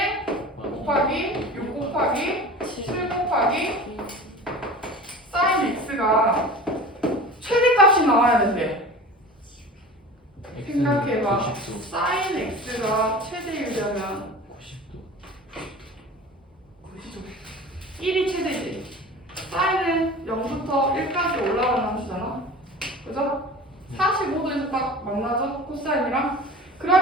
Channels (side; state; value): both; normal; correlation 0.37